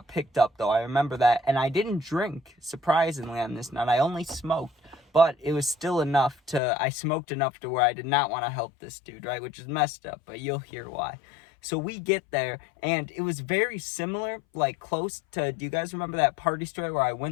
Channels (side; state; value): right; drops out; at 6.6 s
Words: picked up, though. I remember that. And I didn't drink, surprisingly, on this night. I only smoked. But it was still enough I smoked enough to where I did not want to help this dude, right? Which is messed up, but you'll hear why. So we get there, and it was very similar, like close to, do you guys remember that party story where I